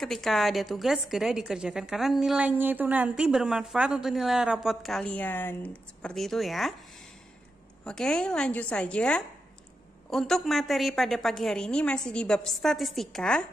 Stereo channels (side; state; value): both; normal; correlation 0.88